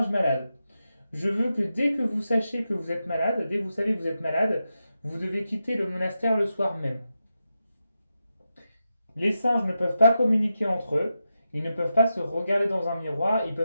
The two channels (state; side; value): inverted; both; correlation -0.88